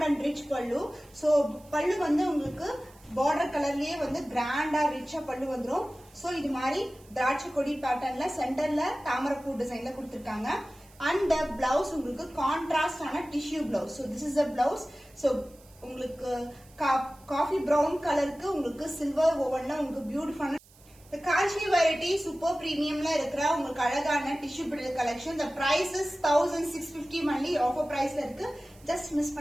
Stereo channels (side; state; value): right; noise; hiss, 27 dB below the sound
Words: அண்ட் ரிச் பல்லு. சோ பல்லு வந்து உங்களுக்கு பார்டர் கலர்லயே வந்து கிராண்டா ரிச்சா பல்லு வந்துடும். சோ இது மாதிரி திராட்சை கொடி பேட்டர்ன்ல சென்டர்ல தாமரைப்பூ டிசைன்ல கொடுத்திருக்காங்க. அண்ட் பிளவுஸ் உங்களுக்கு கான்ட்ராஸ்ட் ஆன tissue blouse. So this is a blouse. So உங்களுக்கு காஃபி பிரவுன் கலருக்கு உங்களுக்கு சில்வர் ஓவன்ல உங்களுக்கு பியூட்டிஃபுல்லான காஞ்சி வெரைட்டி சூப்பர் பிரீமியம்ல இருக்கிற உங்களுக்கு அழகான tissue bridal collection. The price is 1650 only. Offer பிரைஸ்ல இருக்கு. ஜஸ்ட் மிஸ்